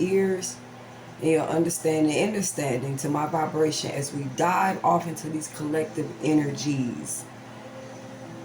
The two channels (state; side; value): identical; both; correlation 1.00